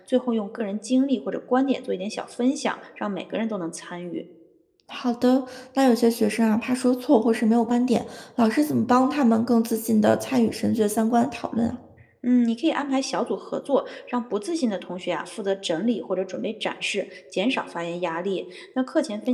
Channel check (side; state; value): both; identical; correlation 1.00